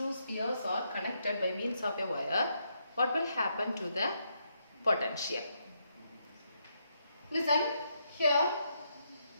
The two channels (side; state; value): both; inverted; correlation -0.79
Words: spheres are connected by means of a wire, what will happen to the potential? Listen, here